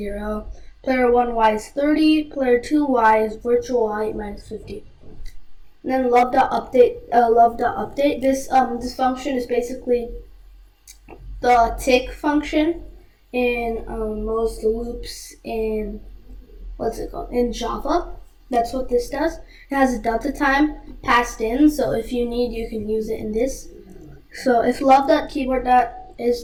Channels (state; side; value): identical; both; correlation 1.00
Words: player 1 Y is 30, player 2 Y is virtual Y minus 50. And then love.update. This function is basically the tick function in most loops in in Java. That's what this does. It has a delta time passed in, so if you need, you can use it in this. So if love.keyboard is